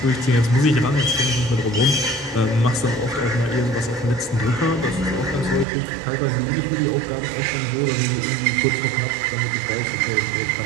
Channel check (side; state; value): left; drops out; at 5.7 s